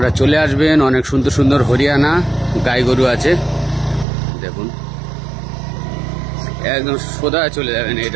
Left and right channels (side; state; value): left; drops out; at 4.0 s